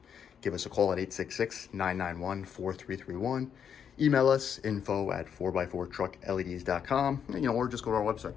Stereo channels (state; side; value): quieter; right; 7.9 dB